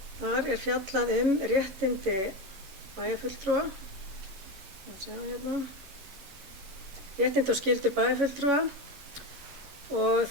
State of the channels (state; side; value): late; left; 11 ms